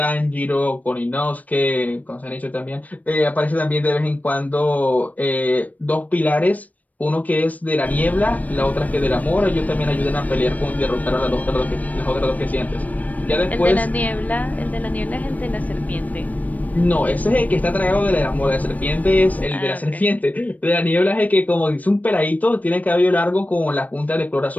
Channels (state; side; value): late; right; 0.073 ms